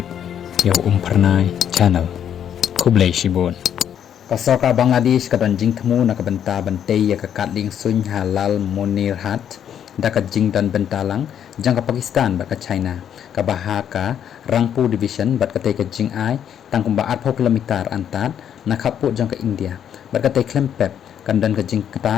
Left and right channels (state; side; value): quieter; right; 9.3 dB